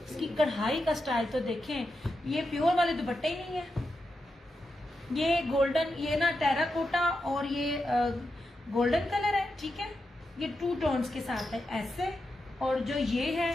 इसकी कढ़ाई का स्टाइल तो देखें, ये प्योर वाले दुपट्टे ही नहीं है। ये गोल्डन, ये ना टेराकोटा और ये गोल्डन कलर है, ठीक है। ये 2 टोन्स के साथ है ऐसे। और जो ये है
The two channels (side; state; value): both; normal; correlation 0.88